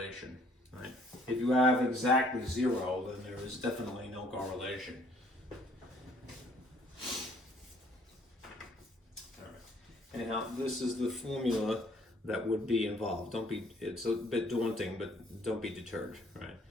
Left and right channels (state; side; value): normal; both; correlation 0.61